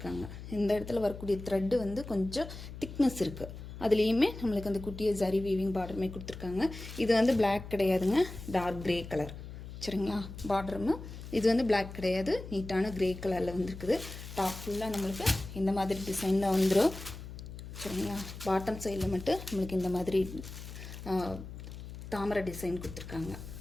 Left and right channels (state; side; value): noise; left; hum, 11 dB below the sound